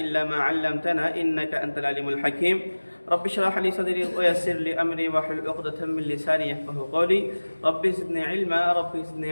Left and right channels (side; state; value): both; inverted; correlation -1.00